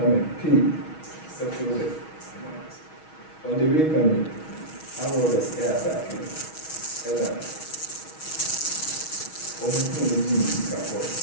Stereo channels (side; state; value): right; late; 6.3 ms